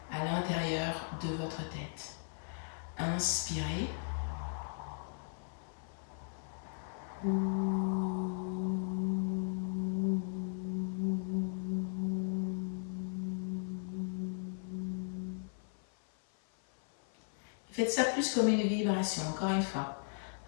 à l'intérieur de votre tête. Inspirez. Faites ça plus comme une vibration, encore une fois.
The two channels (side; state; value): right; silent; 53 dB below the other